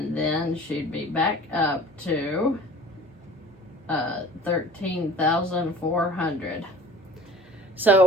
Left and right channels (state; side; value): normal; both; correlation 0.44